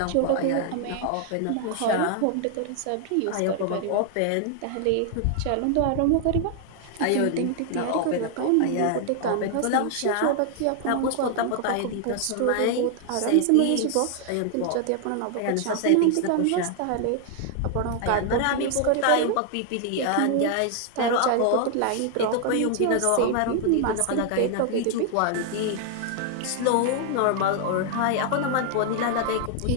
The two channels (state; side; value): different; both; correlation 0.00